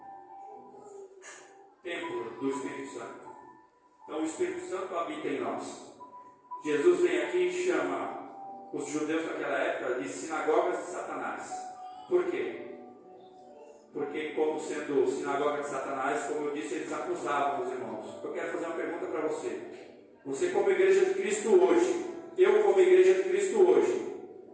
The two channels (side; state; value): both; identical; correlation 1.00